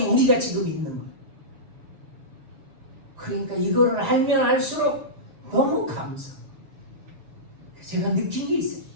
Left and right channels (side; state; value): left; late; 6.9 ms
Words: 우리가 지금 있는 거예요. 그러니까 이거를 알면 알수록 너무 감사. 제가 느낀 게 있어요.